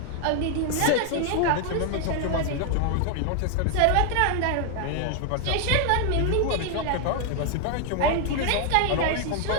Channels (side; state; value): both; different; correlation 0.00